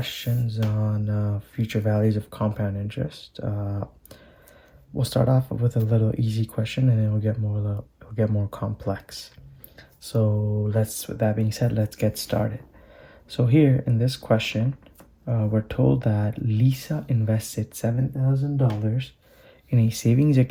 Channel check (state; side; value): identical; both; correlation 1.00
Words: on future values of compound interest. We'll start off with a little easy question, and then it'll get more complex. So with that being said, let's get started. So here in this question, we're told that Lisa invested $7,000 in a savings